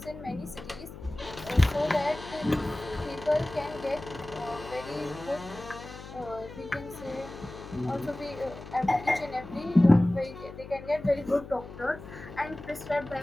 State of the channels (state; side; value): noise; left; hum, 14 dB below the sound